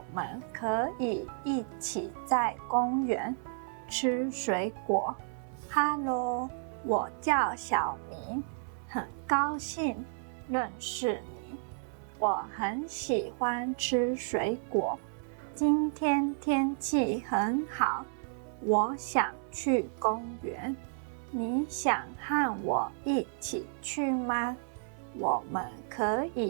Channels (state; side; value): silent; left; 56 dB below the other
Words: 们可以一起在公园吃水果。Hello， 我叫小明，很高兴认识你。我很喜欢吃水果。今天天气很好，我想去公园。你想和我一起去吗？我们可